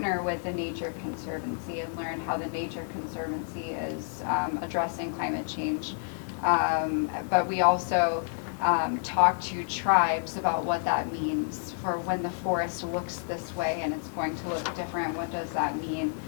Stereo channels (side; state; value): right; silent; digital silence